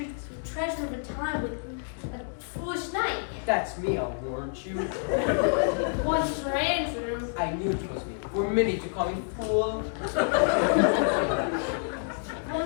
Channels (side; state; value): right; silent; digital silence